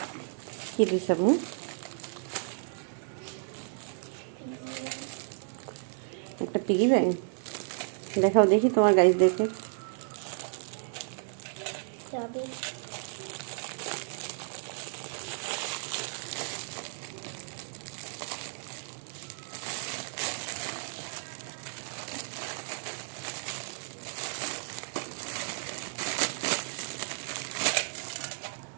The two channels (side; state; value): left; silent; digital silence